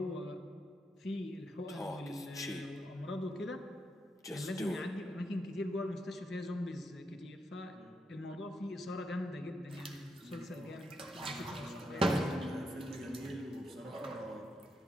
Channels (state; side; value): normal; both; correlation 0.82